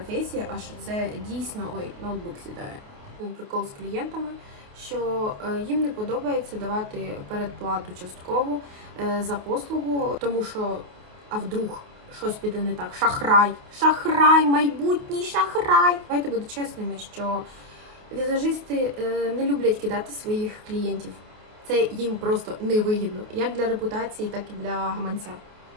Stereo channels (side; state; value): left; late; 28 ms